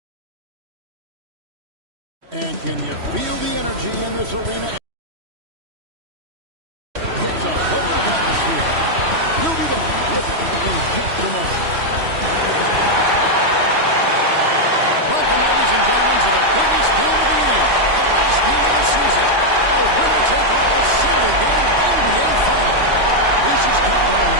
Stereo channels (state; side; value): late; left; 3.1 ms